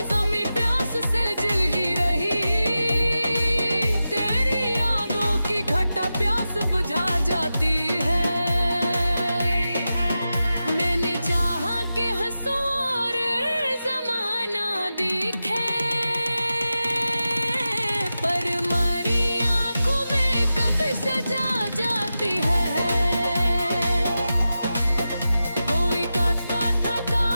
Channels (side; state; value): both; inverted; correlation -0.92